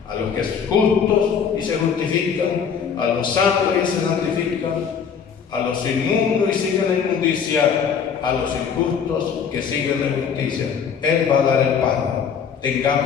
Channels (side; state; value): right; quieter; 7.0 dB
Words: a los que son justos y se justifican, a los santos y se santifican, a los inmundos y siguen la inmundicia, a los injustos que siguen la injusticia. Él va a dar el pago.